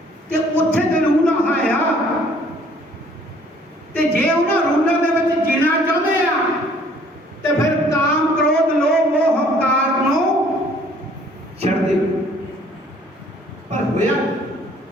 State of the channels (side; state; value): both; normal; correlation 0.58